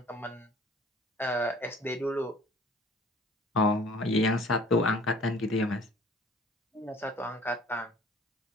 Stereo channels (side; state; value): both; normal; correlation 0.51